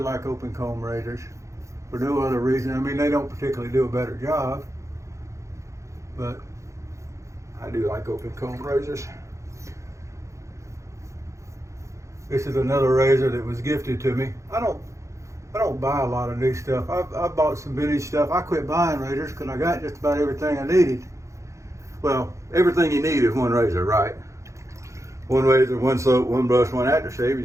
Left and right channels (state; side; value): late; left; 0.15 ms